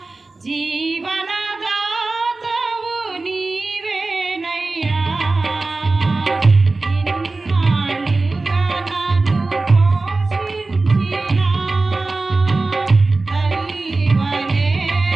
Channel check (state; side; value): quieter; left; 3.4 dB